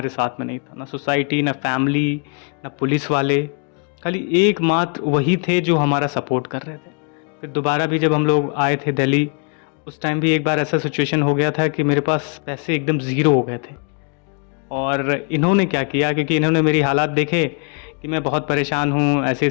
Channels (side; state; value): right; quieter; 38.4 dB